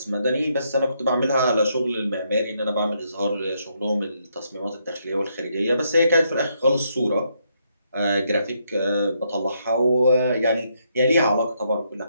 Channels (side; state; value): both; inverted; correlation -0.76